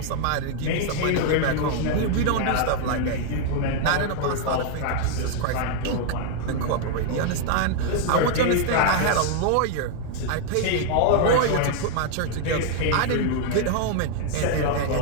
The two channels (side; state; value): both; different; correlation 0.00